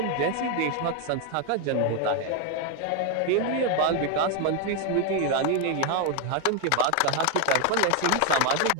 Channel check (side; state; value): both; different; correlation 0.01